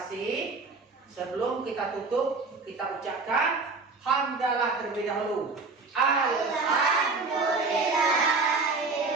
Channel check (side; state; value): left; quieter; 4.0 dB